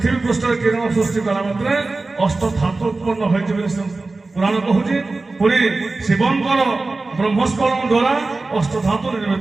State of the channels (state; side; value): quieter; left; 3.5 dB